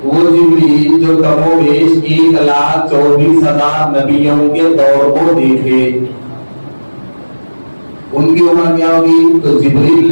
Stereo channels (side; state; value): both; inverted; correlation -1.00